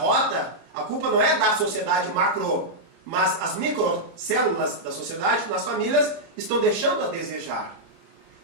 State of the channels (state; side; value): late; left; 30 ms